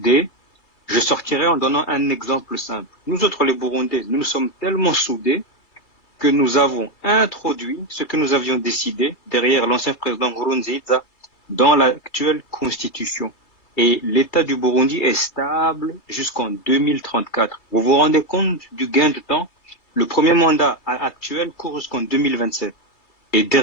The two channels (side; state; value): right; late; 3.2 ms